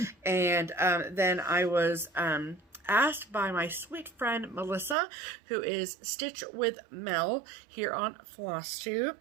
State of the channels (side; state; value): left; drops out; at 5.0 s